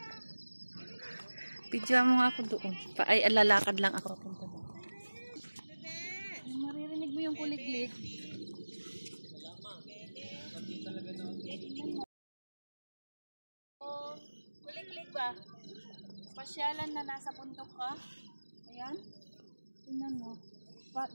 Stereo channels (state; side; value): inverted; both; correlation -1.00